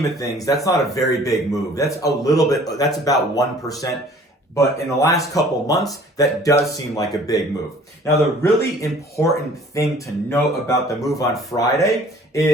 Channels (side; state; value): both; normal; correlation 0.52